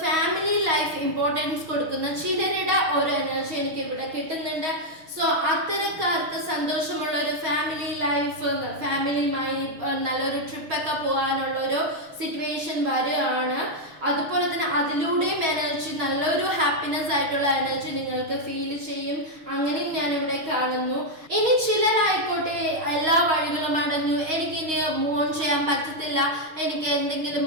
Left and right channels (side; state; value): left; late; 6.3 ms